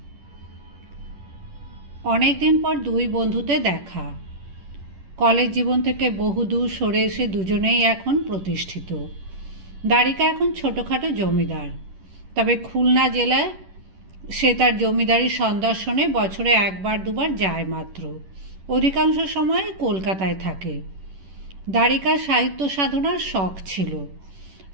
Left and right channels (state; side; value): late; left; 10 ms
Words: অনেকদিন পর দুই বন্ধুতে দেখা। কলেজ জীবন থেকে বহুদূর সরে এসে দুজনেই এখন প্রতিষ্ঠিত। দ্বারিকা এখন ছোটোখাটো জমিদার, তবে খুলনা জেলায় সে তার জমিদারি সন্দর্শনে বছরে একবার দুবার যায় মাত্র। অধিকাংশ সময় কলকাতায় থাকে। দ্বারিকার সাহিত্য সাধনার শখ ছিল,